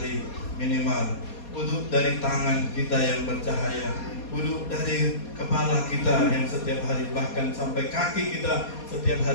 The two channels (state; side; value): late; right; 4.2 ms